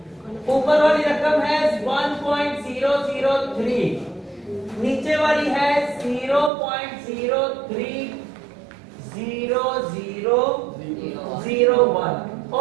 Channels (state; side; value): drops out; left; at 6.5 s